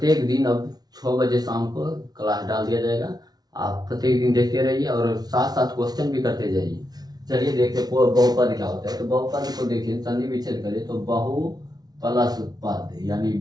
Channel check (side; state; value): left; late; 0.19 ms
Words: दिन अब 6 बजे शाम को क्लास डाल दिया जाएगा। आप प्रत्येक दिन देखते रहिए और साथ साथ क्वेश्चन भी करते जाइए। चलिए देखते हैं बहुपद क्या होता है। तो बहुपद को देखिए, संधि विच्छेद करिए तो बहु प्लस पद यानी